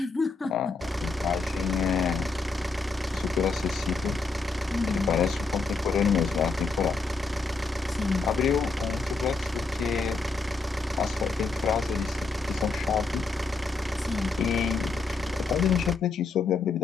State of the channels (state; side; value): quieter; right; 4.0 dB